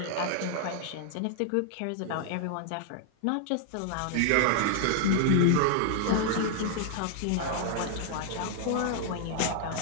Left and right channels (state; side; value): different; both; correlation -0.01